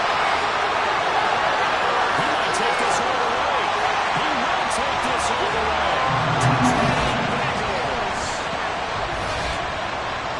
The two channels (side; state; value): both; identical; correlation 1.00